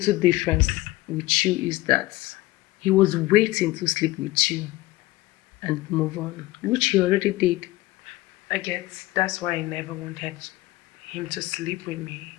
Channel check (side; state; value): right; quieter; 18.6 dB